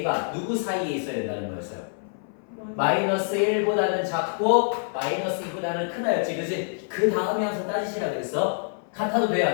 누구 사이에 있어야 된다는 거였어요. 마이너스 1보다는 작고 마이너스 2보다는 크다였지. 그지? 그 다음에 항상 따지시라 그랬어. 같아도 돼요?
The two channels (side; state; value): right; silent; 58 dB below the other